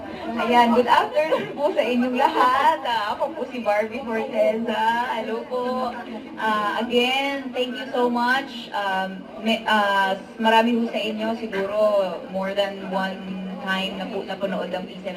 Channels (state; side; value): identical; both; correlation 1.00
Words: Ayan, good afternoon po sa inyong lahat. Ako po si Barbie Fortesa. Hello po. Again, thank you so much. Marami po sa inyo, siguro more than one time na napanood ang